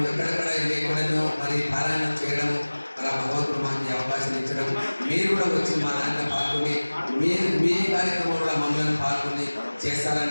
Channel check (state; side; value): inverted; both; correlation -1.00